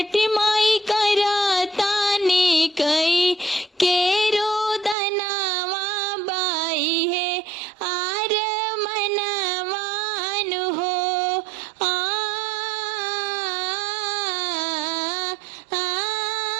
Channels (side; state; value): left; drops out; at 5.0 s